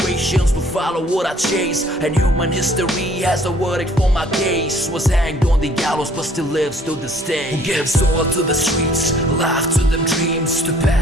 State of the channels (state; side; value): normal; both; correlation 0.58